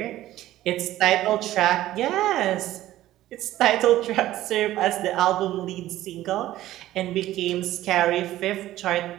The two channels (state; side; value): quieter; left; 14.6 dB